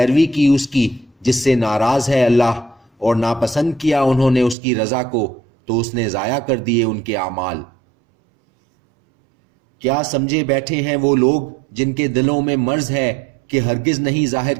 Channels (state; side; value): drops out; left; at 4.5 s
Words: کی اس کی جس سے ناراض ہے اللہ، اور ناپسند کیا انہوں نے اس کی رضا کو، تو اس نے ضائع کر دیے ان کے اعمال۔ کیا سمجھے بیٹھے ہیں وہ لوگ جن کے دلوں میں مرض ہے کہ ہرگز نہیں ظاہر